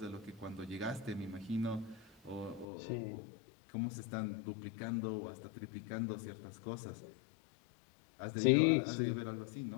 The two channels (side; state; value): right; drops out; at 2.7 s